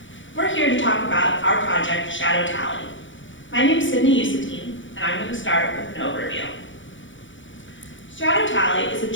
We're here to talk about our project, Shadow Tally. My name is Sydney Usatine, and I'm going to start with an overview. Shadow Tally is a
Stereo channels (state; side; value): late; right; 0.56 ms